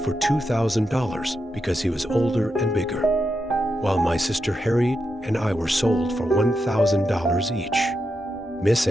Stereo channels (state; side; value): normal; both; correlation 0.85